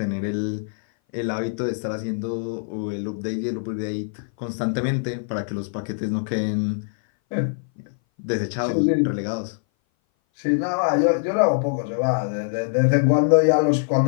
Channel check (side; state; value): right; silent; 59 dB below the other